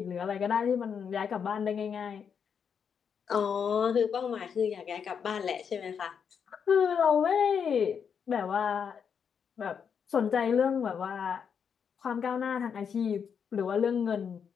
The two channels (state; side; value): quieter; right; 7.0 dB